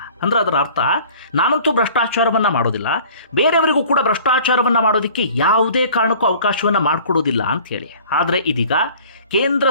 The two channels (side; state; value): both; inverted; correlation -0.48